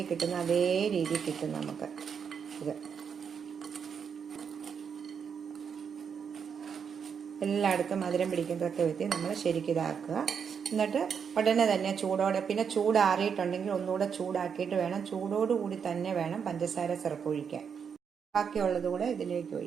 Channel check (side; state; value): left; quieter; 6.9 dB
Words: കിട്ടുന്ന അതേ രീതിയിൽ കിട്ടും നമുക്ക്. ഇത് എല്ലായിടത്തും മധുരം പിടിക്കുന്നതൊക്കെ വിധത്തിൽ നമ്മൾ ശരിക്കും ഇതാക്കുക. എന്നിട്ട് ഉടനെ തന്നെ ചൂടോടെ, പിന്നെ ചൂടാറിയിട്ടുണ്ടെങ്കിൽ ഒന്നുകൂടെ ചൂടാക്കിയിട്ട് വേണം, ചൂടോടുകൂടി തന്നെ വേണം പഞ്ചസാര സിറപ്പ് ഒഴിക്കാൻ. ബാക്കിയുള്ളത് കൂടെ ഇതിലേക്ക്